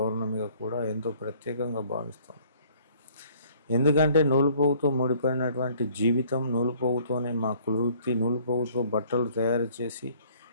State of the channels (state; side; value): inverted; both; correlation -0.58